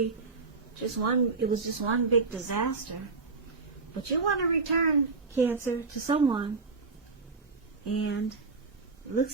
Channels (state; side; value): quieter; left; 4.2 dB